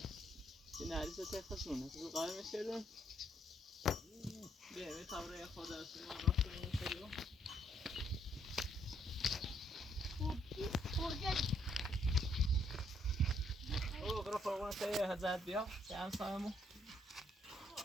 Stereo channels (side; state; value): both; normal; correlation 0.70